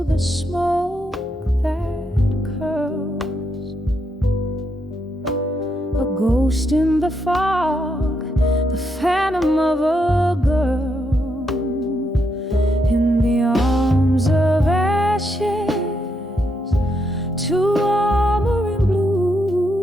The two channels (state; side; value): normal; both; correlation 0.79